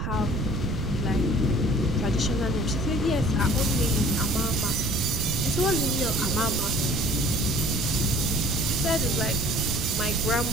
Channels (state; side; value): noise; right; rumble, 2 dB below the sound